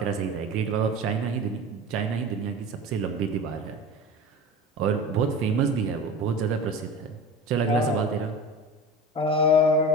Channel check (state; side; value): normal; both; correlation 0.33